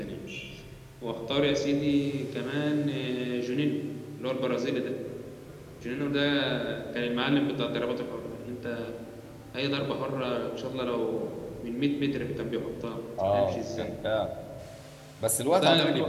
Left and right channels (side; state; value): both; identical; correlation 1.00